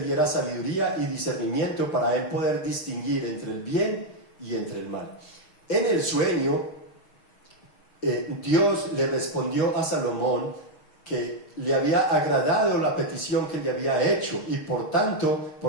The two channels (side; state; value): right; late; 6.4 ms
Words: sabiduría y discernimiento para él poder distinguir entre el bien y entre el mal. En el sueño, Dios le respondió a Salomón que le había agradado la petición que le había hecho, y por tanto,